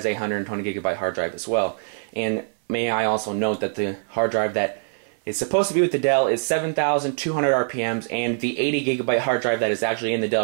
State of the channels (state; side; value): silent; left; 62 dB below the other